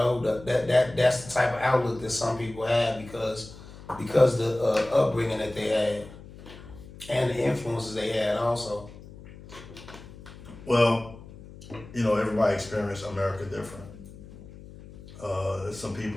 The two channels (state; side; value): noise; left; hum, 17 dB below the sound